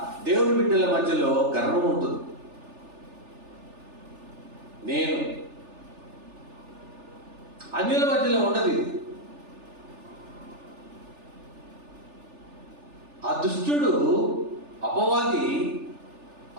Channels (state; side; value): late; left; 3.4 ms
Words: దేవుని బిడ్డల మధ్యలో గర్వం ఉంటుంది. నేను అన్యుల మధ్యలో ఉండదు. ఇది ఆ దుష్టుడు అపవాది